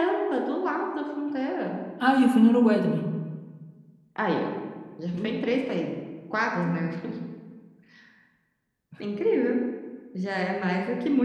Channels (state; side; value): identical; both; correlation 1.00